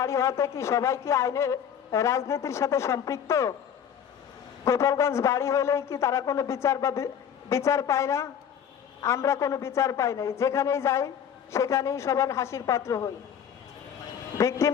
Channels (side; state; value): right; quieter; 8.5 dB